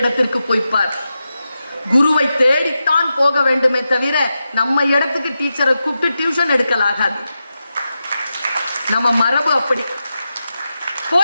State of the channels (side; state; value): both; inverted; correlation -0.90